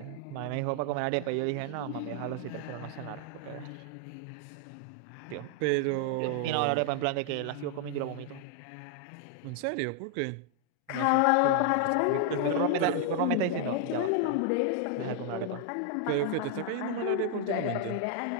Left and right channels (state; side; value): different; both; correlation 0.00